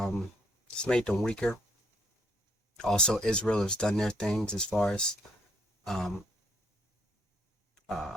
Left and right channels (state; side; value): normal; both; correlation 0.69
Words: It's made them weaker. Also, Israel has done their things as far as